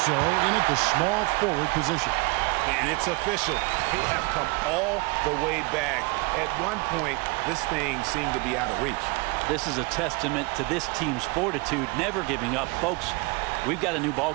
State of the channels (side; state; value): left; quieter; 27.0 dB